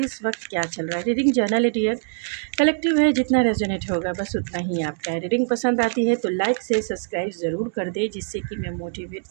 वक्त क्या चल रहा है। रीडिंग जर्नल डियर, कलेक्टिव है, जितना रेजोनेट होगा बस उतना ही आपका है। रीडिंग पसंद आती है तो लाइक से सब्सक्राइब ज़रूर कर दे, जिससे कि मैं मोटिवेट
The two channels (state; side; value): silent; left; digital silence